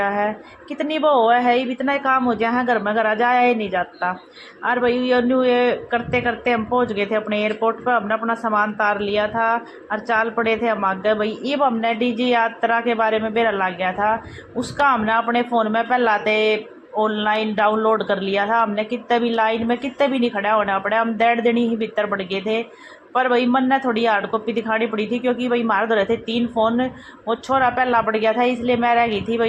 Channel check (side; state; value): both; identical; correlation 1.00